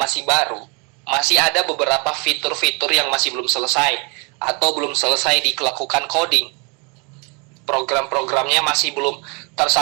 baru, masih ada beberapa fitur-fitur yang masih belum selesai atau belum selesai dilakukan coding. Program-programnya masih belum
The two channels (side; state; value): left; quieter; 32.5 dB